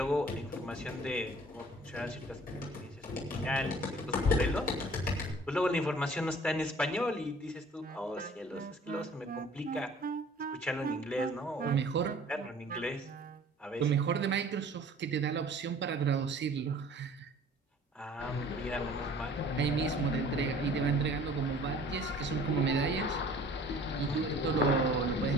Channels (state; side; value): normal; both; correlation 0.50